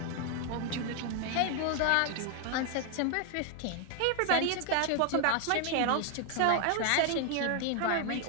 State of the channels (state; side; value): different; both; correlation 0.01